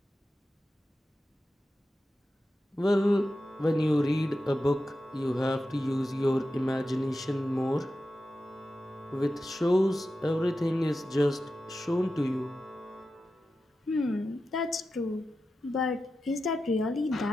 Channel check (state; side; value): normal; both; correlation 0.91